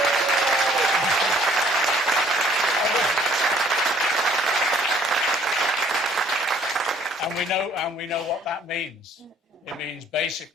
And we know what that means. It means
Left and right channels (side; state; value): both; normal; correlation 0.59